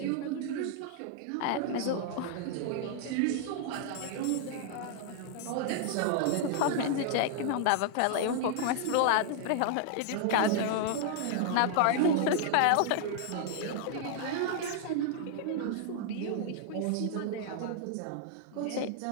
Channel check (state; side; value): different; both; correlation 0.00